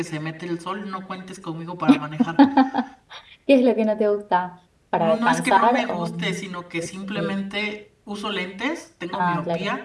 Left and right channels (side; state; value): both; identical; correlation 1.00